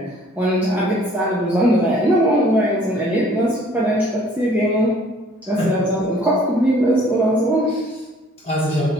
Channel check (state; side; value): normal; both; correlation 0.57